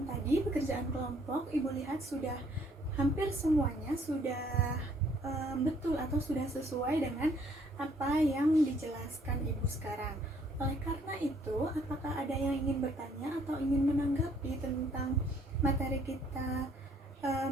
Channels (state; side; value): normal; both; correlation 0.64